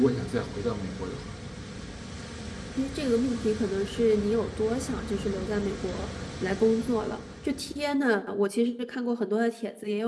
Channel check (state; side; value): identical; both; correlation 1.00